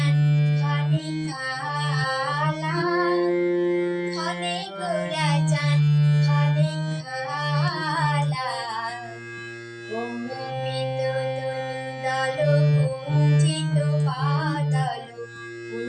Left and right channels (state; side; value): identical; both; correlation 1.00